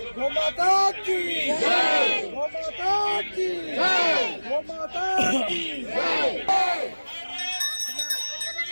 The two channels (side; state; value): both; inverted; correlation -1.00